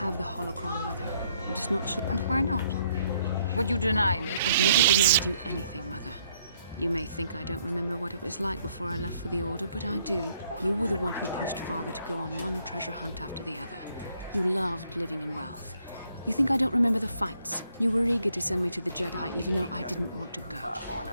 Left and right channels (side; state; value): both; inverted; correlation -0.68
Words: the holocron, Mother. I'm just not sure. And why not? Would you deny me? I've never denied you anything, Mother. You may think I don't remember what it was like before I left for the Order, but I do. You were the one who pushed Father to go on one treasure hunt after the other. You loved living in wealth. You think I don't remember the fights? You were eager to send me to the Jedi even though I didn't want to go.